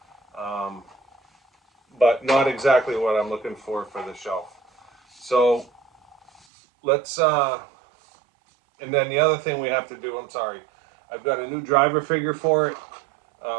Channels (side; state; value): left; drops out; at 6.4 s